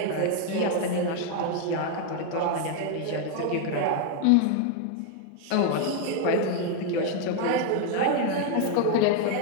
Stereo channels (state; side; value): different; both; correlation 0.00